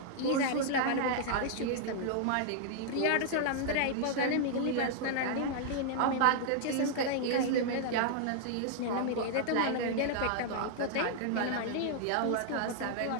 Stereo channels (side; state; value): both; different; correlation -0.01